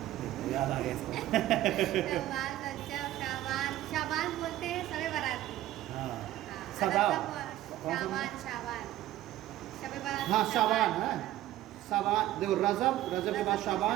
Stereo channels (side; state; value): left; quieter; 14.2 dB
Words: याद आ गया इसको। शाबान बोलते हैं शब बारात। सदा शाबान शाबान शबे बारात हाँ शाबान है, शाबान देखो रजब, रजब के बाद